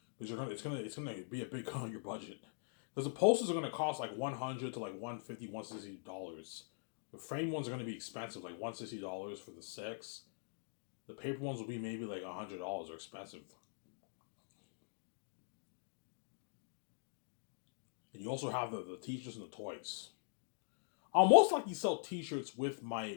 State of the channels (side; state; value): right; silent; digital silence